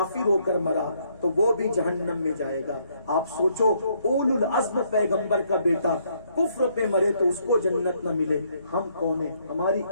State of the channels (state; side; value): inverted; both; correlation -0.70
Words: ہو کر مرا تو وہ بھی جہنم میں جائے گا۔ آپ سوچو اولو العزم پیغمبر کا بیٹا کفر پہ مرے تو اس کو جنت نہ ملے، ہم کون ہیں؟ ہماری